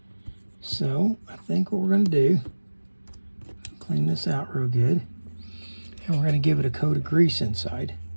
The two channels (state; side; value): inverted; both; correlation -1.00